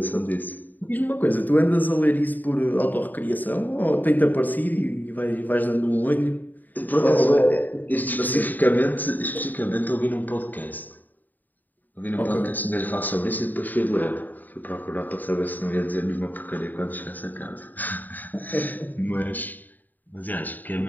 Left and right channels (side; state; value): right; late; 0.086 ms